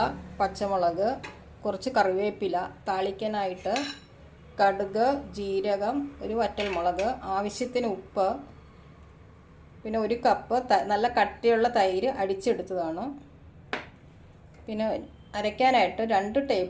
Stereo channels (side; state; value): both; identical; correlation 1.00